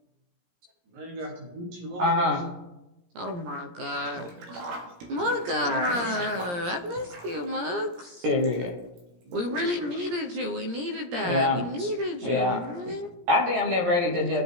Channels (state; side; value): late; left; 17 ms